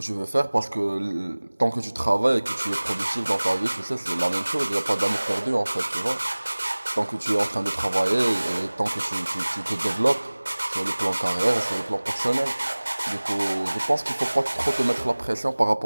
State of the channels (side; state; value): both; inverted; correlation -1.00